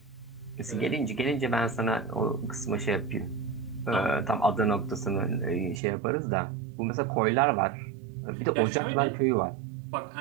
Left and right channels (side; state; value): left; drops out; at 5.8 s